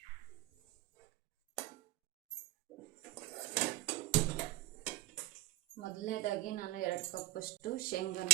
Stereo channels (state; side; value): quieter; left; 16.8 dB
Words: ಮೊದಲನೇದಾಗಿ ನಾನು 2 ಕಪ್ಪಷ್ಟು ಶೇಂಗಾನ